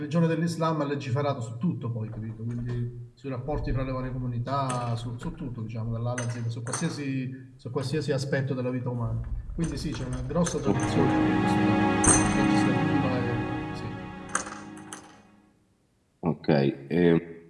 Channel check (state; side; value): identical; both; correlation 1.00